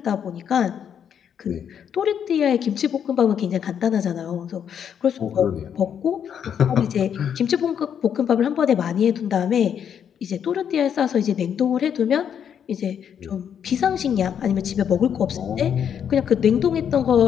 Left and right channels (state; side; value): quieter; right; 8.4 dB